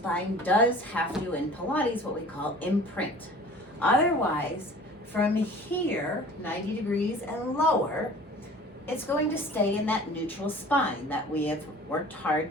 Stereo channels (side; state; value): both; normal; correlation 0.45